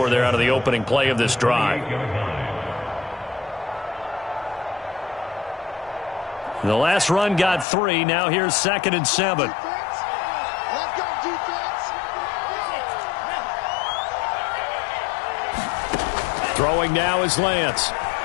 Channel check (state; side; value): drops out; right; at 7.7 s